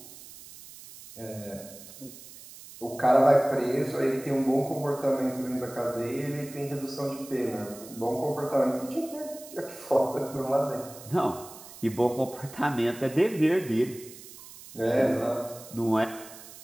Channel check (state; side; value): noise; right; hiss, 17 dB below the sound